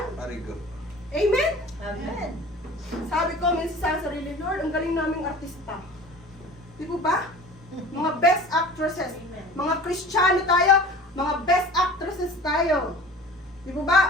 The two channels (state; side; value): normal; both; correlation 0.41